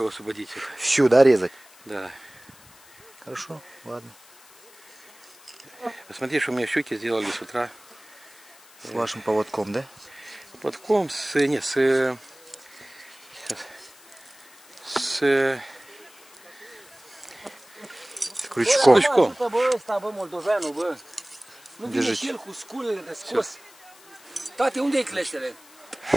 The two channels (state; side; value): noise; left; hiss, 24 dB below the sound